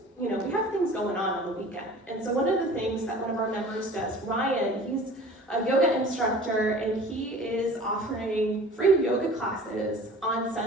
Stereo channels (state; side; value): normal; both; correlation 0.44